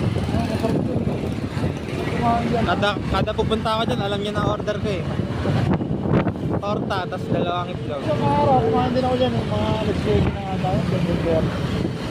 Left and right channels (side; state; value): both; identical; correlation 1.00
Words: Kada pupunta ako dyan, alam niya na order ko eh. Torta, tas dalawang itlog. Isang araw, kumain din ako dyan eh. Mga alas-20 na nga tayo.